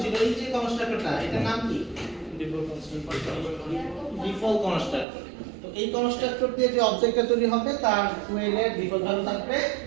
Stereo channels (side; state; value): left; drops out; at 5.1 s